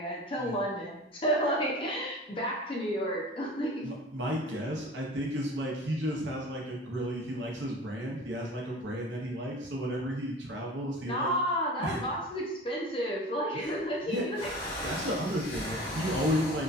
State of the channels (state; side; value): normal; both; correlation 0.39